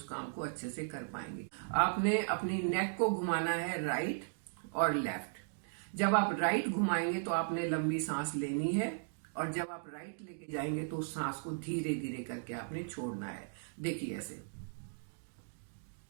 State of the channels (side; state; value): left; silent; digital silence